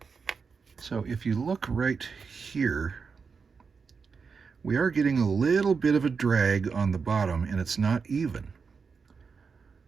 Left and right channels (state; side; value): quieter; left; 5.4 dB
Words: So if you look right here, we are getting a little bit of a drag on the bottom, and it's not even.